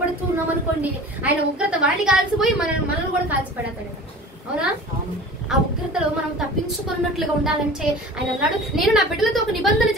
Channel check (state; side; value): normal; both; correlation 0.40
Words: ఉన్నాం అనుకోండి, ఆయన ఉగ్రత వాడిని కాల్చిపోయి మనల్ని కూడా కాల్చిపెడతాడు. అవునా? ఆ ఉగ్రతలో మనం తప్పించుకున్నట్లుగా ఉండాలంటే ఆయన అన్నాడు నేను నా బిడ్డలతో ఒక నిబంధన